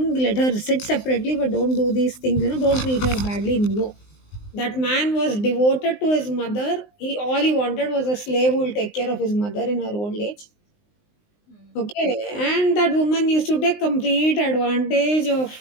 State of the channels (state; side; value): late; right; 19 ms